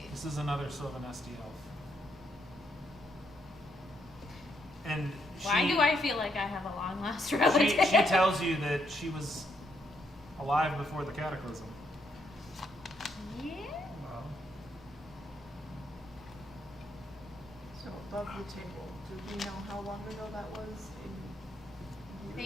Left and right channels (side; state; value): both; normal; correlation 0.75